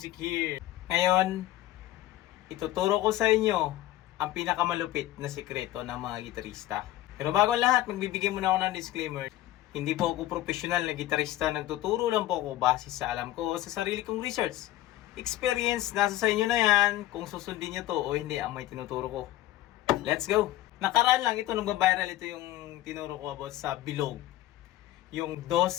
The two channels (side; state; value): right; quieter; 15.2 dB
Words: here. Ngayon, ituturo ko sa inyo ang pinakamalupit na sikreto ng mga gitarista. Pero bago ang lahat, magbibigay muna ako ng disclaimer. Hindi po ako professional na gitarista. Nagtuturo lang po ako base sa alam ko sa sarili kong research. Experience, nasa sa inyo na yan kung susundin nyo to o hindi ang may tinuturo ko. Let's go! Nakaraan lang ito, nagba-viral ito yung tinuro ko about sa bilog. Yung